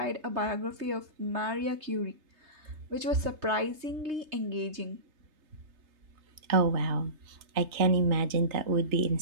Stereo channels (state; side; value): late; left; 3.2 ms